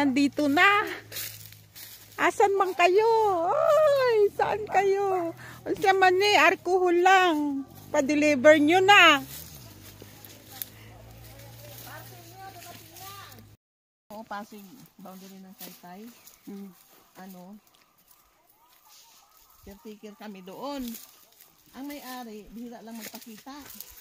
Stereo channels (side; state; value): both; identical; correlation 1.00